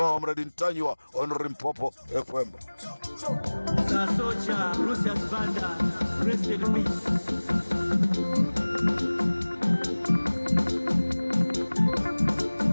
Ntanywa on Limpopo FM. Socha Lucius Banda, rest in peace.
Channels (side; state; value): both; inverted; correlation -1.00